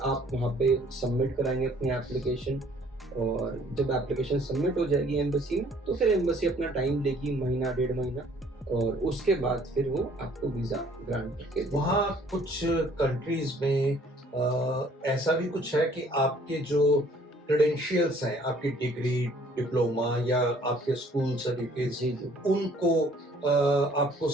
आप वहाँ पे सबमिट कराएंगे अपनी एप्लीकेशन, और जब एप्लीकेशन सबमिट हो जाएगी एम्बेसी में, तो फिर एम्बेसी अपना टाइम लेगी, महीना 1.5 महीना, और उसके बाद फिर वो आपको वीज़ा ग्रांट करके। वहाँ कुछ कंट्रीज में ऐसा भी कुछ है कि आपके जो क्रेडेंशियल्स हैं, आपकी डिग्री, डिप्लोमा या आपके स्कूल सर्टिफिकेट, उनको आपको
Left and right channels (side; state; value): both; normal; correlation 0.58